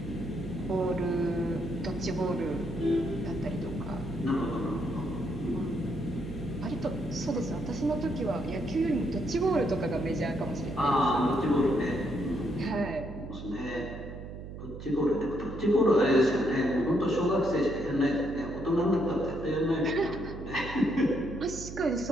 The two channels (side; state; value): right; noise; hum, 10 dB below the sound